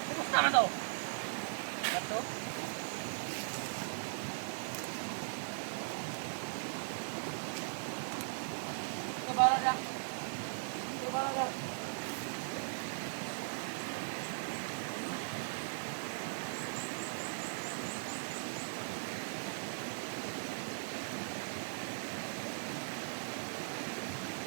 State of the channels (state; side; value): silent; left; digital silence